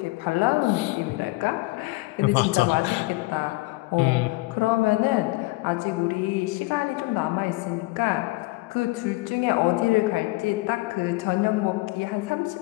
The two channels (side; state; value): right; quieter; 22.1 dB